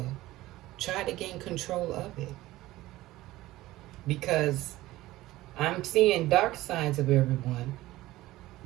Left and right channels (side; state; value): left; quieter; 17.1 dB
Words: try to gain control of it. Because I'm seeing dark sides of everyone,